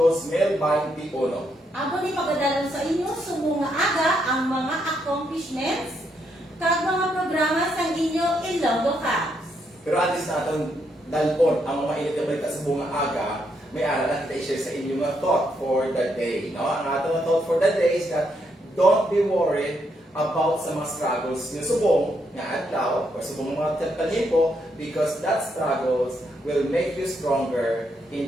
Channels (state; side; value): normal; both; correlation 0.77